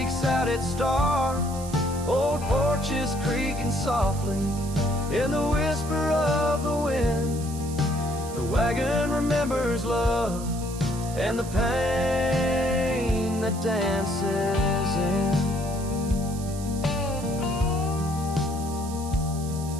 out its star. Old porches creaking softly in the whisper of the wind. The wagon remembers love and the pain that dances in.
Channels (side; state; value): right; noise; hiss, 14 dB below the sound